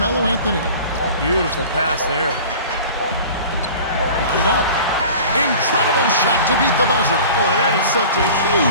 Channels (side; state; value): both; inverted; correlation -0.41